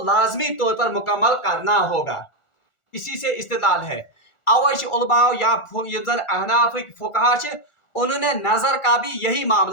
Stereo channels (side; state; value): right; late; 1.4 ms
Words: लाजमी तौर पर मुकम्मल करना होगा। इसी से इस्तिदलाल है। अवश्य उलमा या अहनाफ फुकहा उन्होंने नजर का भी यही